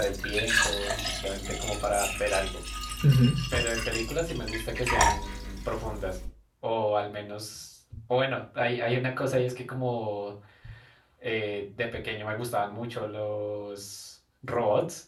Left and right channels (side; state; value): both; identical; correlation 1.00